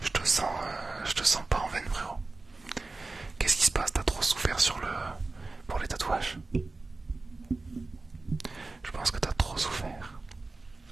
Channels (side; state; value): left; quieter; 3.4 dB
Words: Je te sens pas en veine, frérot. Qu'est-ce qui se passe? T'as trop souffert pour les tatouages? Je pense que t'as trop souffert.